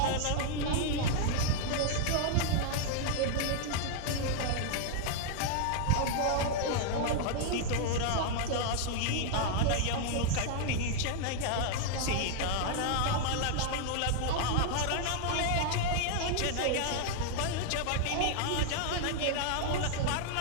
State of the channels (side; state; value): both; different; correlation 0.00